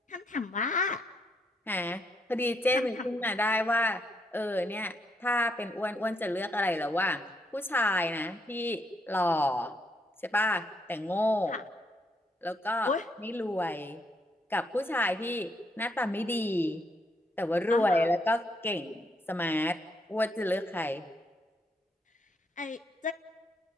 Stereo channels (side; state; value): both; normal; correlation 0.75